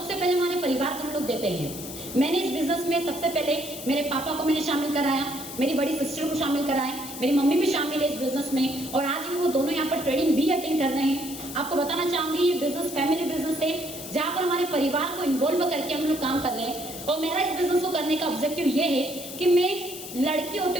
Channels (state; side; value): noise; left; hiss, 11 dB below the sound